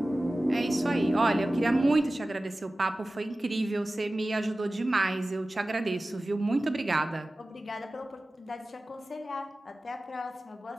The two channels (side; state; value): both; normal; correlation 0.96